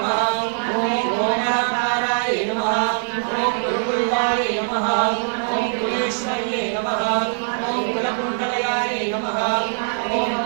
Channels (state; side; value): silent; left; 64 dB below the other